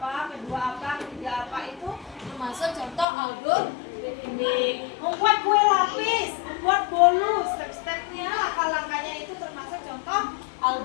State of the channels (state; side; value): drops out; right; at 3.1 s